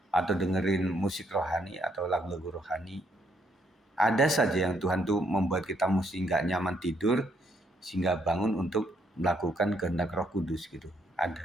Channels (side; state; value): both; normal; correlation 0.72